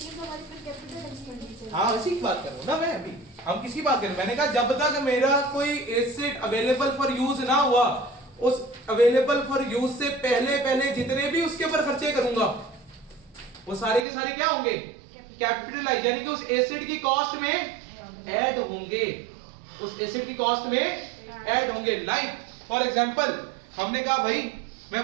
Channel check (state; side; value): drops out; left; at 14.1 s